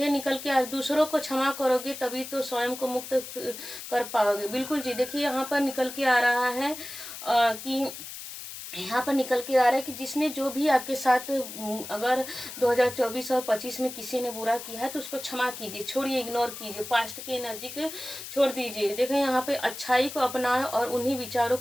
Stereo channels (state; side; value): noise; left; hiss, 11 dB below the sound